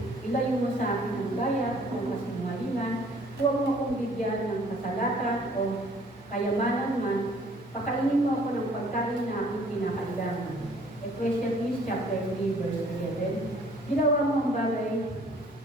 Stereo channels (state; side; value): normal; both; correlation 0.57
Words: ilayo mo sa akin ang gaya o kasinungalingan, huwag mo akong bigyan ng kasalatan o kayamanan man, pakainin mo ako ng pagkain na aking kinakailangan. Ecclesiastes chapter 3, verse 11, ginawa mo ang